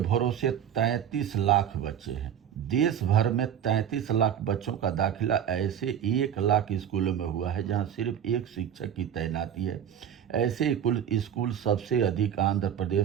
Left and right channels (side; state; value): left; quieter; 9.2 dB